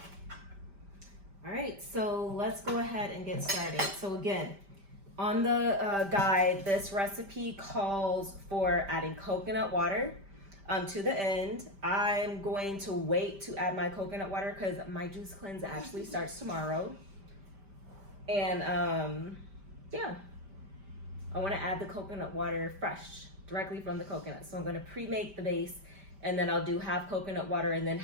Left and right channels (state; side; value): late; left; 5.1 ms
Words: All right, so let's go ahead and get started. So again, on the guide, this recipe calls for adding coconut water to the end. I'm going to wait to add my coconut water because my juice cleanse actually starts tomorrow. And yeah, I want to add the coconut water fresh, directly from the coconut. So I'm going to pre-make the base, and then I'll do half coconut water and then